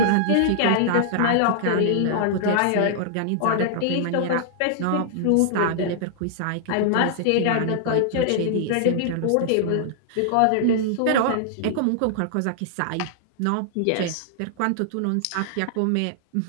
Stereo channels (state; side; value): different; both; correlation -0.01